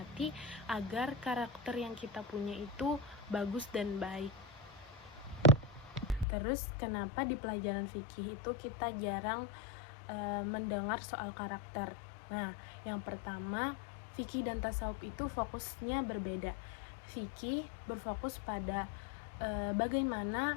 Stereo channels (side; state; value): right; drops out; at 6.2 s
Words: agar karakter yang kita punya itu bagus dan baik. Terus kenapa di pelajaran fikih itu kita jarang mendengar soal karakter? Nah, yang pertama, fikih dan tasawuf itu fokusnya berbeda. Fikih berfokus pada bagaimana